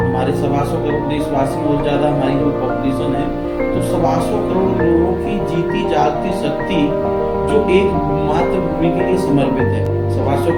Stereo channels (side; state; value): both; identical; correlation 1.00